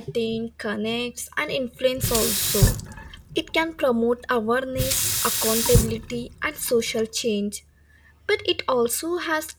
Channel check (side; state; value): both; identical; correlation 1.00